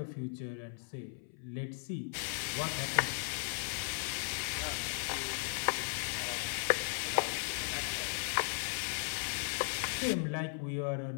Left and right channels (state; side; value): silent; right; 53 dB below the other